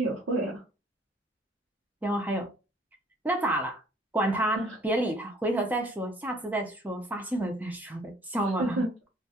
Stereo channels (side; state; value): both; normal; correlation 0.58